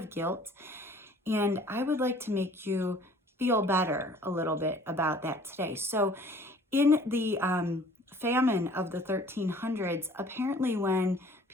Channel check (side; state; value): both; normal; correlation 0.52